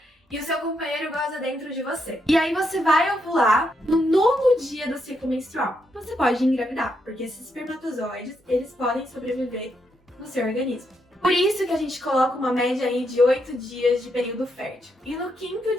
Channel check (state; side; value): normal; both; correlation 0.80